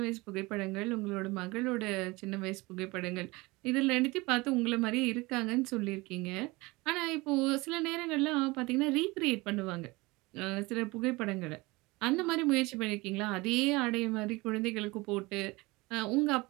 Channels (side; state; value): left; quieter; 23.0 dB